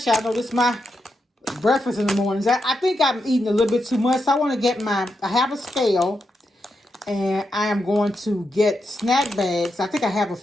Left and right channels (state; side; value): normal; both; correlation 0.85